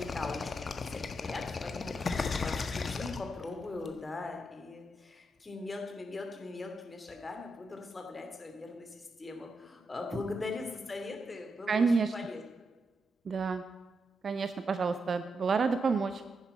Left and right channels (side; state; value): both; normal; correlation 0.84